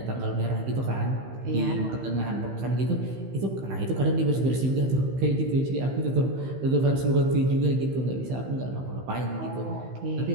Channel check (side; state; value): left; late; 15 ms